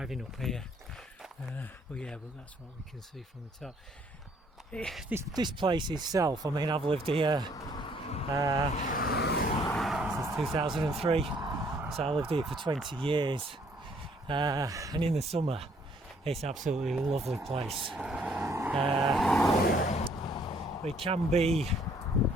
up here. But that's what we can see from the top. This place itself, I mean, I've lived here since 2003, so I lived here for 20 years. And in the summer, it's absolutely a lovely place. It can be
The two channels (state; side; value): normal; both; correlation 0.64